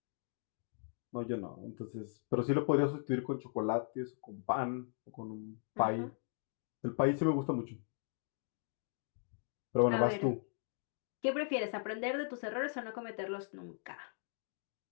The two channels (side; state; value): right; silent; 52 dB below the other